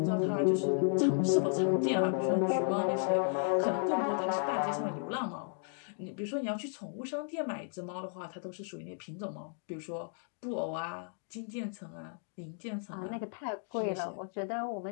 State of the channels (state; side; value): silent; right; 55 dB below the other